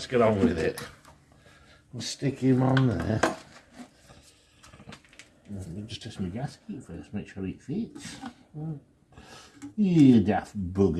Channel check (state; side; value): identical; both; correlation 1.00